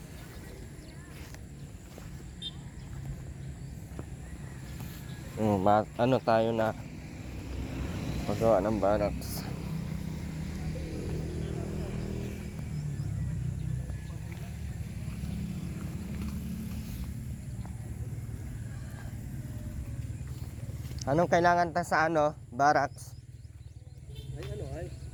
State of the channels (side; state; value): both; identical; correlation 1.00